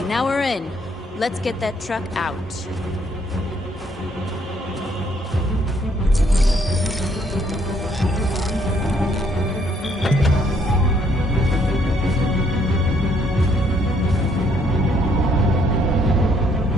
now we're in. Let's get that truck out.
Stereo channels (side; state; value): both; normal; correlation 0.67